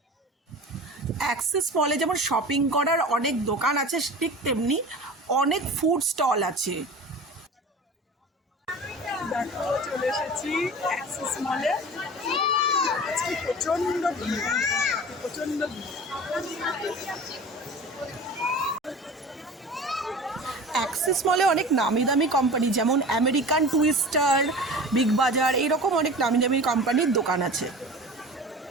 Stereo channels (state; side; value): normal; both; correlation 0.36